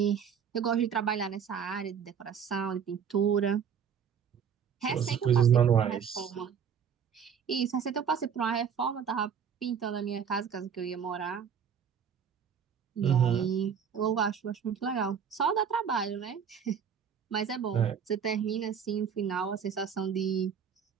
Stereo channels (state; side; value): quieter; left; 7.4 dB